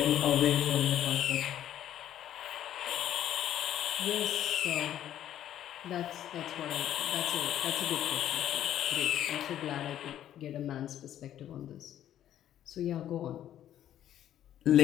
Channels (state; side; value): quieter; right; 11.4 dB